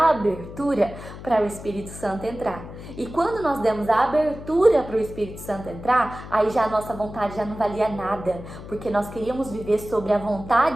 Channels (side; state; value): left; noise; hum, 13 dB below the sound